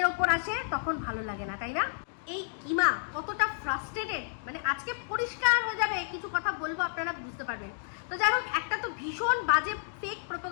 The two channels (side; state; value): right; silent; digital silence